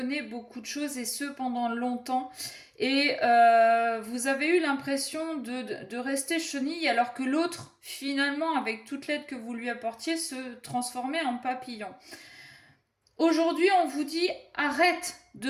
beaucoup de choses, et ce pendant longtemps. Et vous avez eu l'impression de rester chenille, alors que l'autre, finalement, avec toute l'aide que vous lui apportiez, se transformait en papillon. Aujourd'hui, on vous dit arrête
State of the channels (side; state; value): both; identical; correlation 1.00